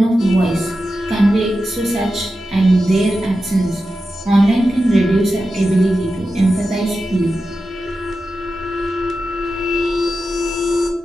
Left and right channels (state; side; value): normal; both; correlation 0.91